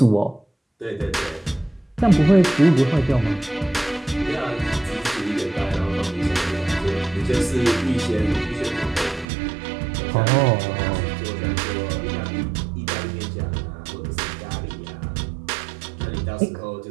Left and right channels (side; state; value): left; drops out; at 9.2 s